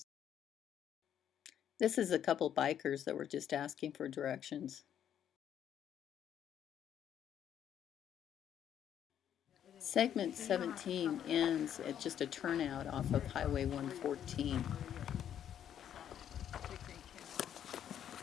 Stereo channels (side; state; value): right; quieter; 9.8 dB